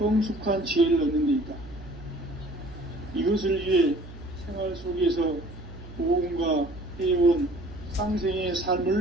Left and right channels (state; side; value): noise; right; hum, 15 dB below the sound